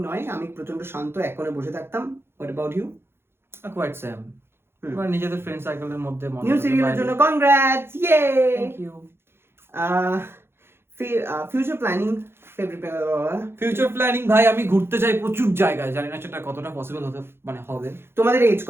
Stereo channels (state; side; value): late; left; 0.11 ms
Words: নয়, আমি প্রচন্ড শান্ত এক কোণে বসে থাকতাম। What about you? Quite same. এবার নিজেদের ফ্রেন্ড সার্কেলের মধ্যে নিউ সিরিয়ালের জন্য কনগ্রাটস, ইয়ে। Thank you. Future planning, future planning ভাই আমি ঘুরতে চাই প্রচুর জায়গায়, জানি না সেটা কতটা পসিবল হতে মানে হবে। তোমাদের এজ